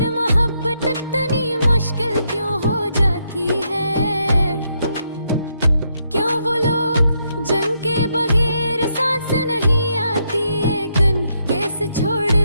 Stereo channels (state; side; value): inverted; both; correlation -0.77